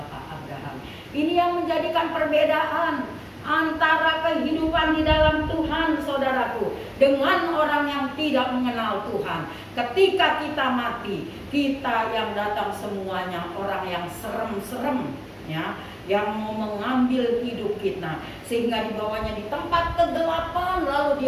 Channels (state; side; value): identical; both; correlation 1.00